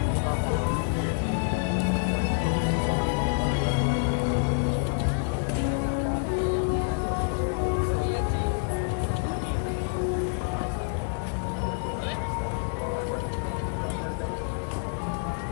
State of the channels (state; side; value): silent; right; digital silence